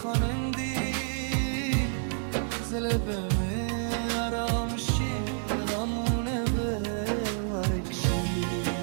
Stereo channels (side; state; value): left; silent; digital silence